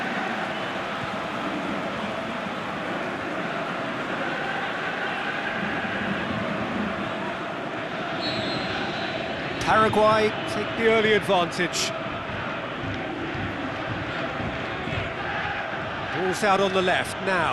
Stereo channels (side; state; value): both; identical; correlation 1.00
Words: Paraguay take the early advantage. Ball's out on the left